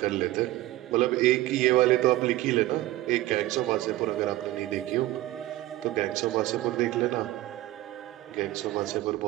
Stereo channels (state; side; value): quieter; left; 16.5 dB